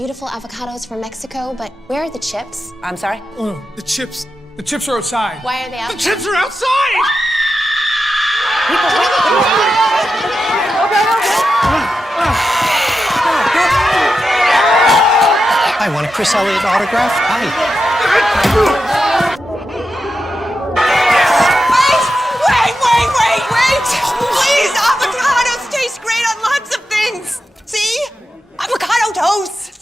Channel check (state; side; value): normal; both; correlation 0.89